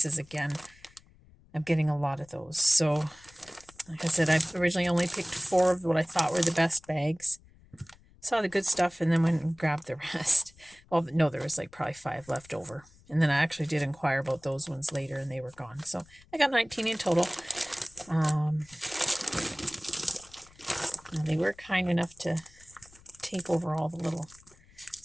again. I'm getting a lot of those, so like I said, I originally only picked 4 of what I thought were the best bags. Saw the good stuff and then went and grabbed the rest. Well, no, there was like probably 5 left over. And then I actually did inquire about those ones later and they were gone. So I got 19 in total. They were kind enough to take over all the little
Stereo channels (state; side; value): noise; left; rumble, 26 dB below the sound